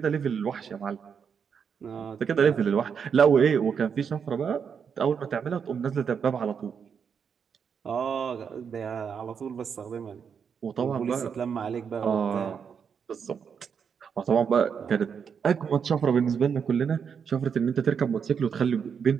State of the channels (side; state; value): left; quieter; 6.8 dB